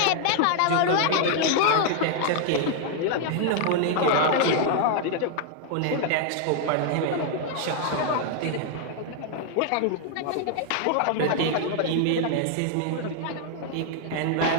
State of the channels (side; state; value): both; different; correlation 0.00